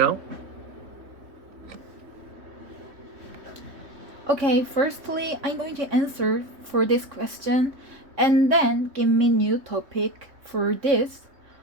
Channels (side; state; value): left; late; 3.6 ms